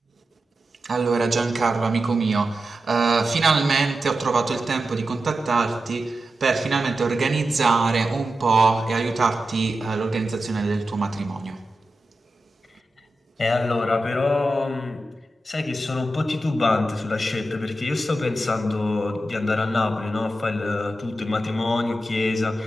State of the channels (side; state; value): both; normal; correlation 0.91